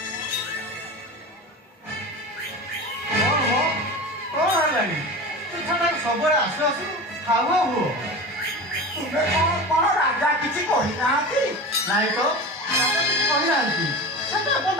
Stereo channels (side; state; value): both; normal; correlation 0.31